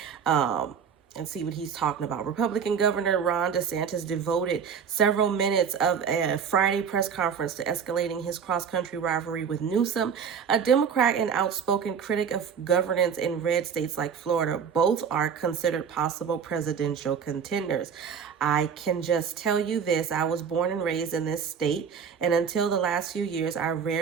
And see what he's talking about. Republican Governor Ron DeSantis devoted several minutes of a Friday press conference to escalating his cross-country rivalry with Newsom, a Democrat and outspoken critic of governance in red states like Florida. Both are considered possible presidential contenders. I can just tell you this: I was born and raised in this state, and until the last few years, I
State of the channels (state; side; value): quieter; left; 6.9 dB